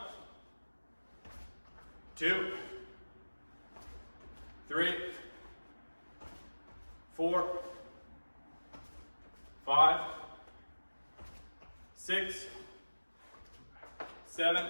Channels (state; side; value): inverted; both; correlation -1.00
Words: 2, 3, 4, 5, 6,